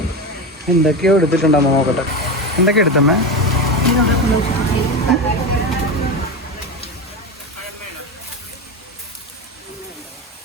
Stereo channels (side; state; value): both; normal; correlation 0.19